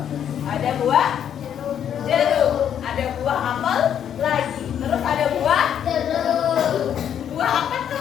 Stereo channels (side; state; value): right; quieter; 9.2 dB